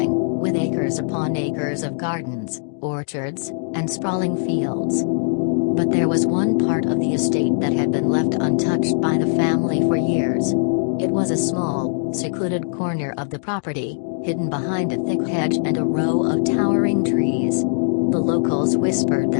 with acres upon acres of gardens, orchards, and sprawling fields. But there was one part of the estate that had been left untouched by the family for years. It was a small, secluded corner of the property, hidden behind a thick hedge and a row of towering trees. The locals whispered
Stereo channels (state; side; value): silent; right; digital silence